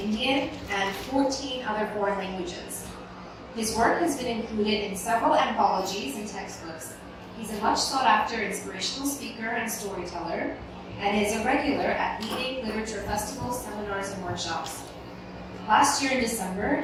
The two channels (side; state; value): both; identical; correlation 1.00